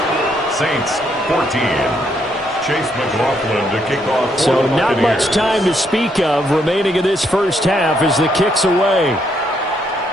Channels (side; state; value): both; normal; correlation 0.74